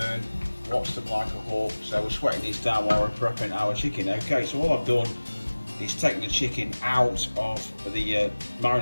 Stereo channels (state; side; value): inverted; both; correlation -1.00